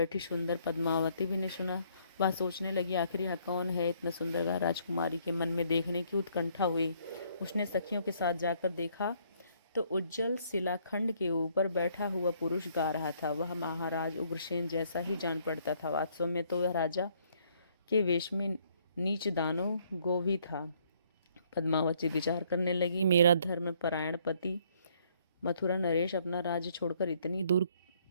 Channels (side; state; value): both; inverted; correlation -0.66